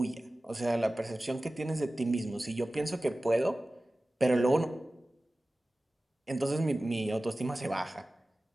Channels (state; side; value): normal; both; correlation 0.96